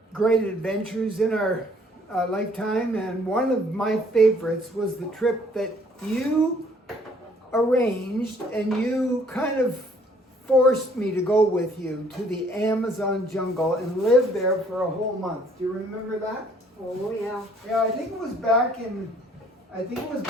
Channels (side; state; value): both; normal; correlation 0.61